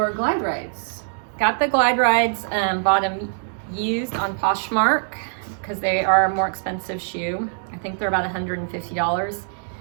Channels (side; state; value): left; silent; digital silence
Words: glide rides. Got the glide rides, bought them used on Poshmark because they are a more expensive shoe. I think they're about $150.